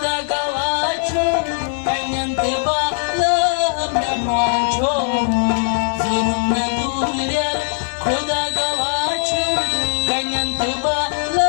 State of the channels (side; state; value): right; silent; digital silence